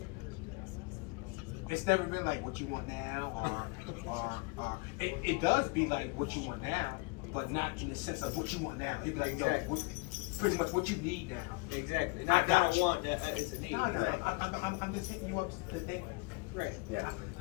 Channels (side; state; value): right; quieter; 27.5 dB